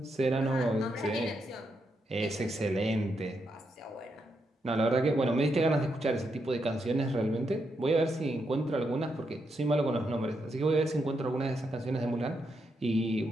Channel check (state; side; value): normal; both; correlation 0.82